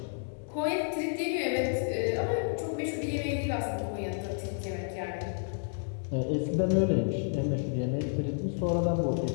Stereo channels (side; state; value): right; silent; digital silence